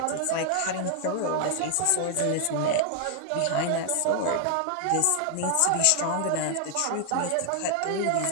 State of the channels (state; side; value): different; both; correlation 0.00